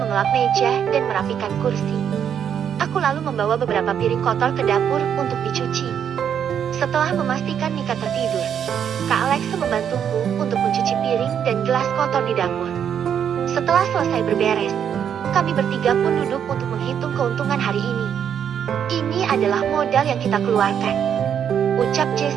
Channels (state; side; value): quieter; left; 8.5 dB